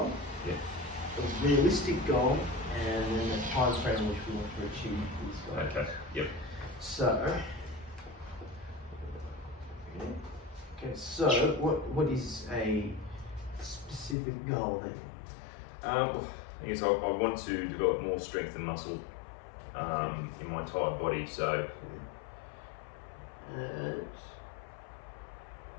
a realistic goal, and then the time frame in which we want to achieve these goals. Okay, yep. So, what is a specific goal that you I guess I want to develop more strength and muscle in my entire body, so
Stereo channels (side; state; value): right; drops out; at 14.2 s